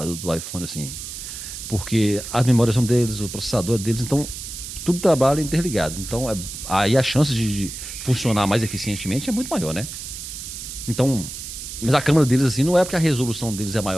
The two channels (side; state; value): right; noise; hiss, 9 dB below the sound